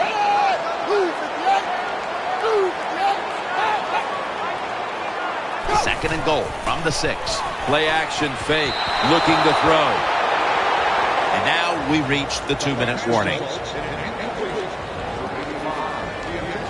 Second and goal from the 6. Play action fake, looking to throw. And now we reach the 2-minute warning.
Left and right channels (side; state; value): both; identical; correlation 1.00